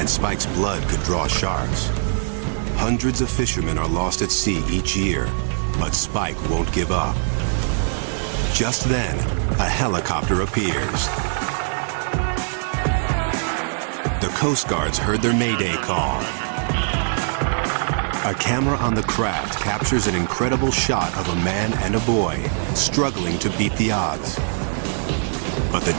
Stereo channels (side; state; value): left; silent; 62 dB below the other